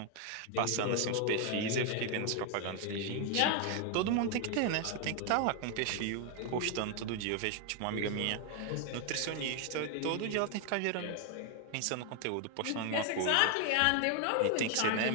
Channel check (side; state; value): both; different; correlation 0.01